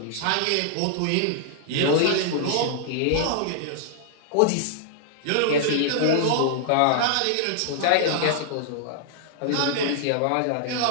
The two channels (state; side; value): different; both; correlation -0.01